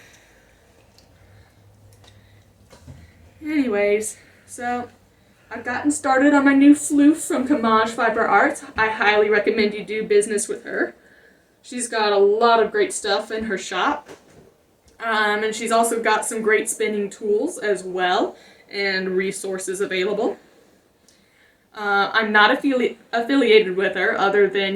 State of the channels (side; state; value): both; identical; correlation 1.00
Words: so I've gotten started on my new floof from Camaj Fiber Arts. I highly recommend you do business with her. She's got a lot of great stuff in her shop. And she's also got some great spinning tools as well, and resources available. I'm not affiliated with her, other than,